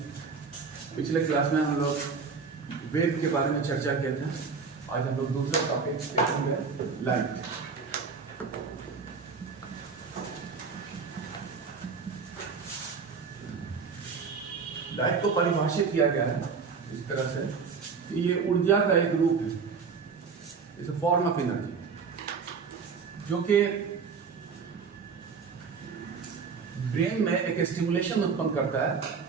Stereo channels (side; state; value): left; quieter; 5.3 dB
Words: पिछले class में हम लोग वेव के बारे में चर्चा किए थे। आज हम लोग दूसरा टॉपिक देखेंगे, लाइट। लाइट को परिभाषित किया गया है इस तरह से कि ये ऊर्जा का एक रूप है, it's a form of energy, जो कि ब्रेन में एक स्टिमुलेशन उत्पन्न करता